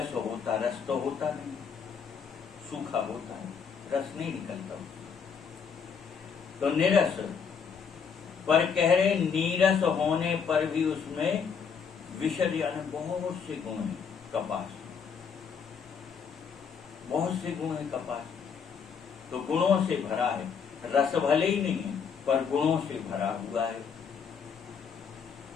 होता, रस तो होता नहीं, सूखा होता है, रस नहीं निकलता। तो निरस, पर कह रहे नीरस होने पर भी उसमें विशद यानी बहुत से गुण हैं। कपास बहुत से गुण है, कपास तो गुणों से भरा है। रस भले ही नहीं है पर गुणों से भरा हुआ है।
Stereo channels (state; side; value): quieter; right; 6.5 dB